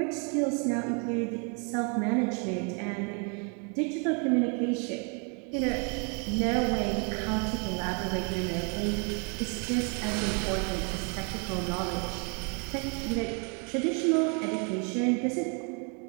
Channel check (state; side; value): quieter; left; 36.7 dB